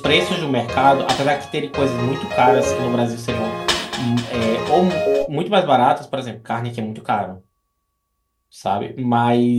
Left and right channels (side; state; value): both; identical; correlation 1.00